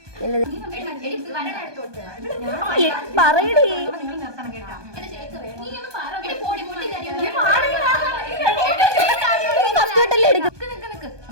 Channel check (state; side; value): late; left; 1.2 ms